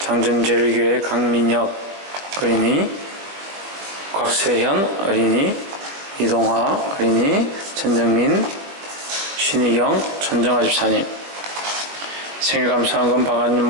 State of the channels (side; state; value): left; late; 20 ms